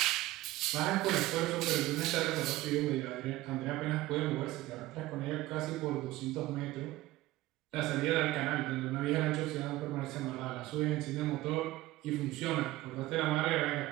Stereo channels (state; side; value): quieter; left; 17.3 dB